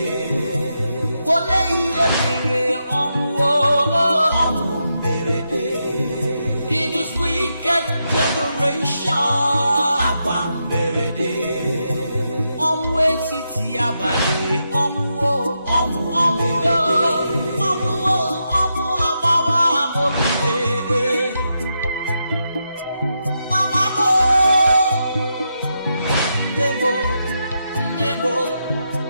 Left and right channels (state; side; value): inverted; both; correlation -0.84